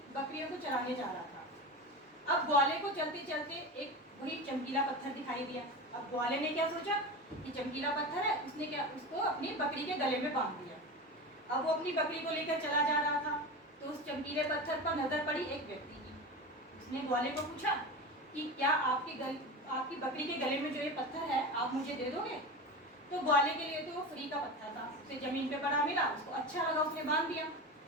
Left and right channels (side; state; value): both; normal; correlation 0.26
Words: बकरियों को चराने जा रहा था। अब ग्वाले को चलते चलते एक वही चमकीला पत्थर दिखाई दिया। अब ग्वाले ने क्या सोचा कि चमकीला पत्थर है, उसने क्या उसको अपनी बकरी के गले में बांध दिया। अब वो अपनी बकरी को लेकर चला जा रहा था तो उस चमकीले पत्थर पर नजर पड़ी एक व्यक्ति की। उसने ग्वाले को पूछा कि क्या आपकी बकरी के गले में जो ये पत्थर है आप मुझे दे दोगे? तो ग्वाले के लिए तो वो फ्री का पत्थर था, उसे जमीन पे पड़ा मिला, उसको अच्छा लगा, उसने बांध दिया।